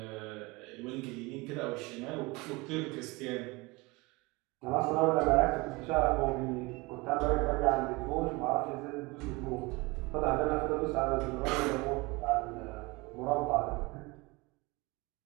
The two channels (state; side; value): quieter; left; 24.5 dB